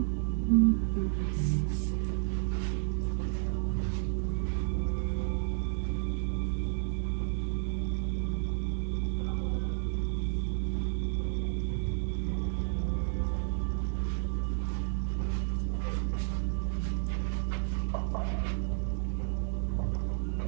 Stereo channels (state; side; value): silent; left; digital silence